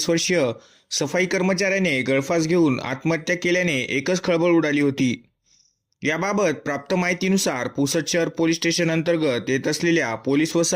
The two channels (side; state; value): both; identical; correlation 1.00